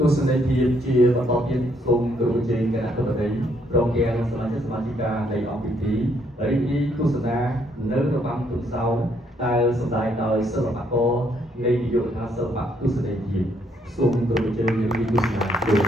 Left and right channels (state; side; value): normal; both; correlation 0.70